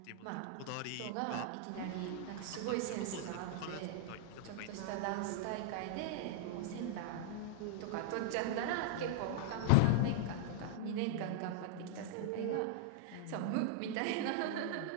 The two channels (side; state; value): both; different; correlation -0.01